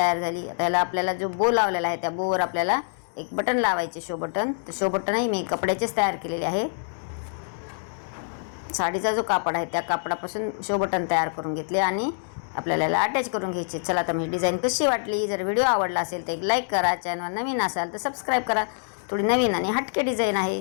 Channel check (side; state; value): right; silent; digital silence